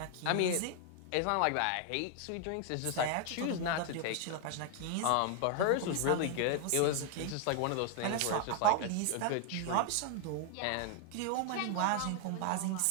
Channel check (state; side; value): different; both; correlation 0.00